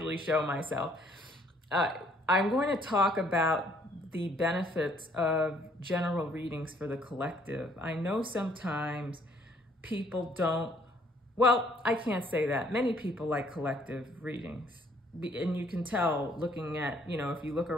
show myself. I'm going to talk about the benefits of general readings for the collective. I know sometimes people don't, well, I can't say that. Many people like collective readings. And you can tell looking at, if you look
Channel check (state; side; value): normal; both; correlation 0.64